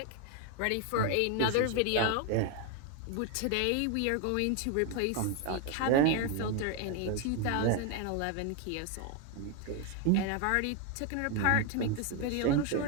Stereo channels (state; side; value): different; both; correlation 0.01